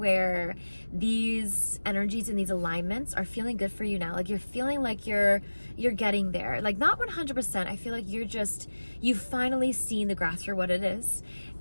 these energies and these alignments are feeling good for you now. Like you're feeling like you're getting there. Like not 100%. I feel like you've finally seen the grass for what it is,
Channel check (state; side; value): inverted; both; correlation -1.00